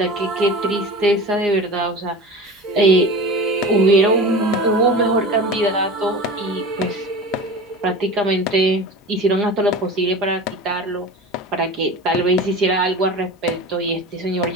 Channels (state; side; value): normal; both; correlation 0.33